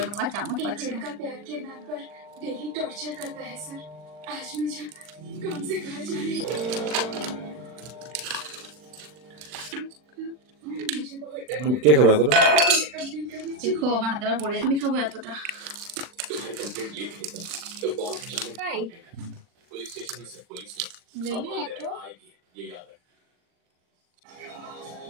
নেবো, চামচ পাচ্ছি না। কে খাবে এতটা? দেখো আমার হাতে আবার পড়ে, আমি খাবো এতটা।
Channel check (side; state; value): left; late; 40 ms